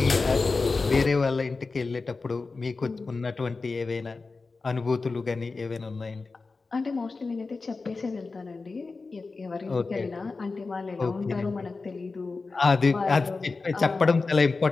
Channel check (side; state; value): right; quieter; 4.0 dB